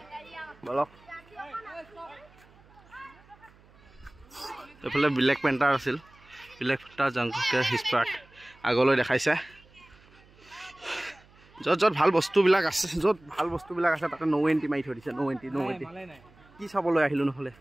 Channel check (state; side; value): noise; right; hum, 27 dB below the sound